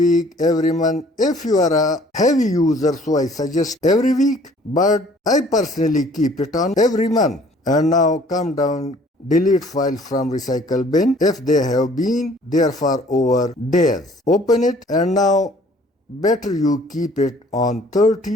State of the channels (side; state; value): both; normal; correlation 0.56